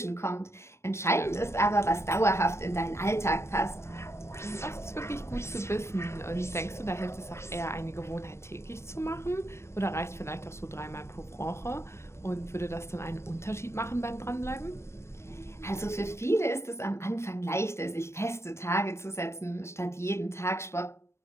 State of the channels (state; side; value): late; right; 0.13 ms